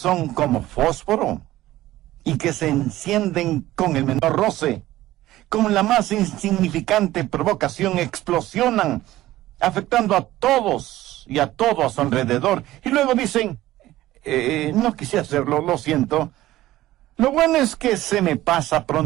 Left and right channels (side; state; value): left; quieter; 15.7 dB